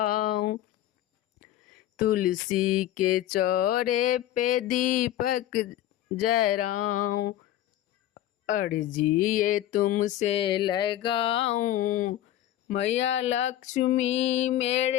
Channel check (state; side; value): quieter; right; 13.0 dB